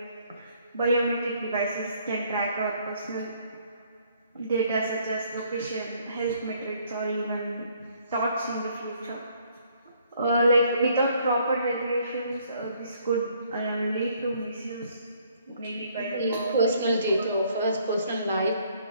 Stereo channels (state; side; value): inverted; both; correlation -0.64